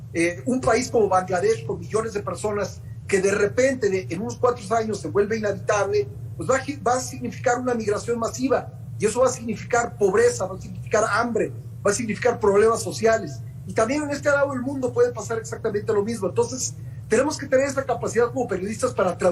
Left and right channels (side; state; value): both; identical; correlation 1.00